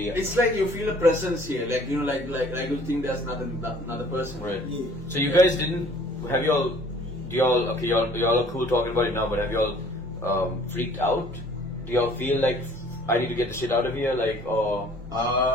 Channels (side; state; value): both; normal; correlation 0.54